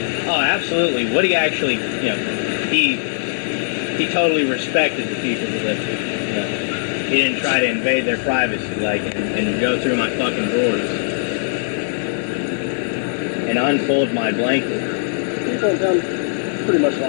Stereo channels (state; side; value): silent; right; 66 dB below the other